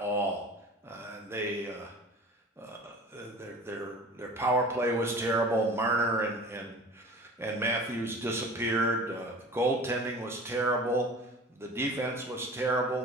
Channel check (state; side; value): normal; both; correlation 0.40